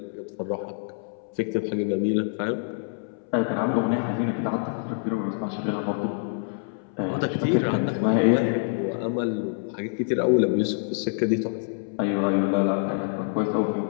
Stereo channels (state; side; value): silent; right; 61 dB below the other